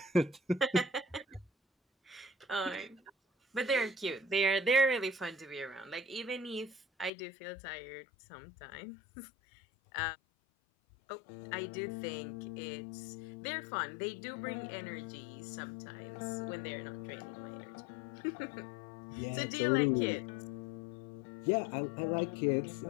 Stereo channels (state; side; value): drops out; right; at 7.1 s